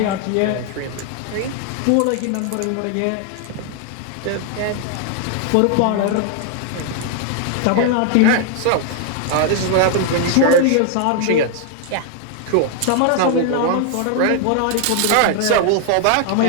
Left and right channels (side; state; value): both; different; correlation 0.00